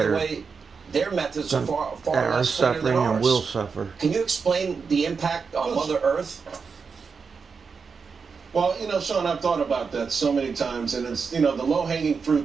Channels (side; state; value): left; quieter; 5.4 dB